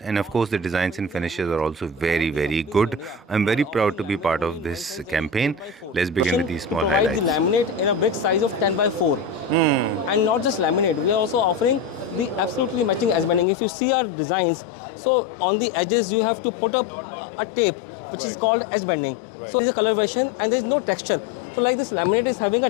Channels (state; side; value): drops out; right; at 13.5 s